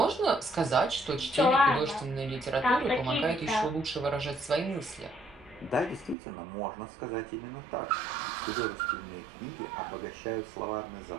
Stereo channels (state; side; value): drops out; left; at 6.2 s